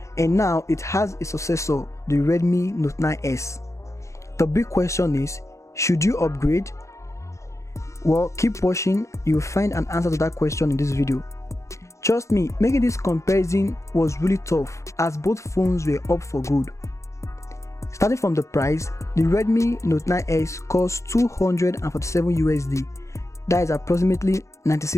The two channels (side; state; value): right; late; 0.14 ms